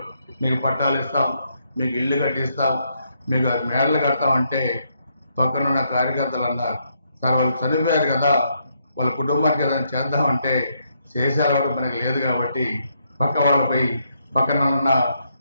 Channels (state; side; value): inverted; both; correlation -0.76